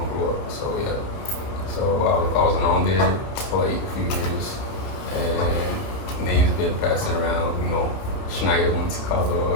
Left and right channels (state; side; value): late; right; 30 ms